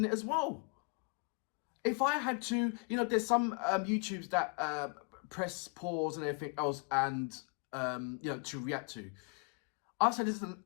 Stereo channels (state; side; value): quieter; right; 36.1 dB